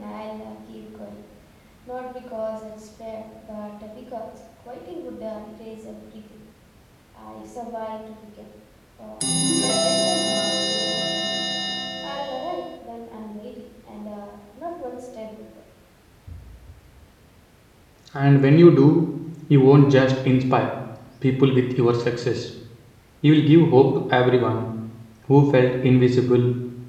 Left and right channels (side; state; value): both; identical; correlation 1.00